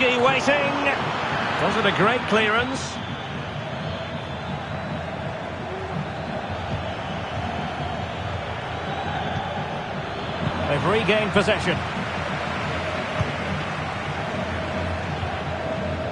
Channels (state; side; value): identical; both; correlation 1.00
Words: waiting. Wasn't a great clearance. They've regained possession.